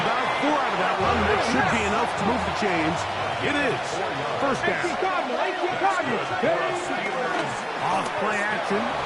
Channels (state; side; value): identical; both; correlation 1.00